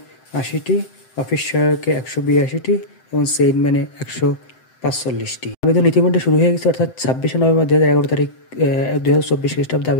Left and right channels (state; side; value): late; right; 7.8 ms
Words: অফিস সহায়কে 182টি এবং সেইনম্যানে 145টি। আবেদন ইতিমধ্যে শুরু হয়ে গেছে, অর্থাৎ 26শে নভেম্বর 2011 তারিখ 2024 খ্রিস্টাব্দে